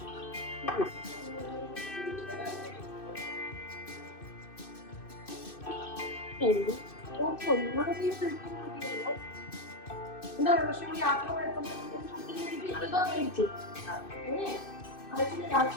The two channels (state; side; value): late; right; 2.6 ms